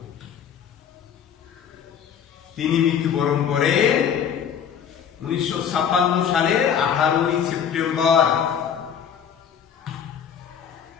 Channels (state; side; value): quieter; right; 8.1 dB